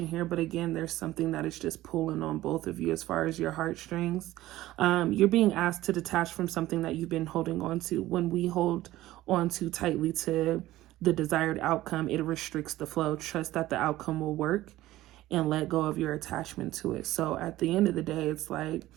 here. But again, there's something that is just pulling on both of you as far as your heartstrings. You're being asked to detach from something that you've been holding on to. When we hold on too tightly to the desired outcome, it restricts the flow. Trust that the outcome will work and let go of your attachment to it. So at the end of the day, it's like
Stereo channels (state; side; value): quieter; left; 15.9 dB